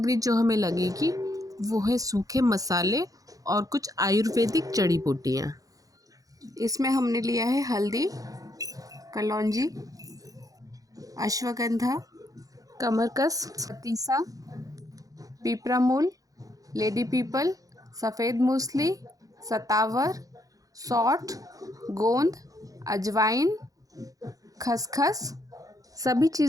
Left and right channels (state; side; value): late; left; 0.17 ms